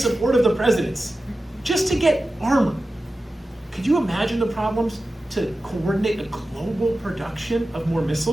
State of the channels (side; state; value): both; normal; correlation 0.94